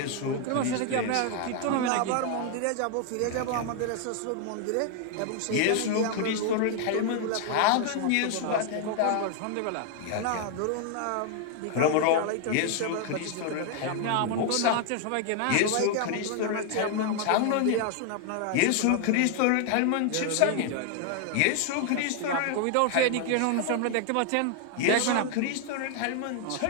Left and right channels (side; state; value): both; different; correlation 0.00